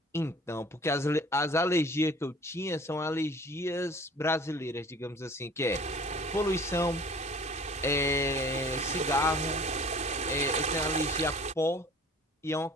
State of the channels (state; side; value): normal; both; correlation 0.48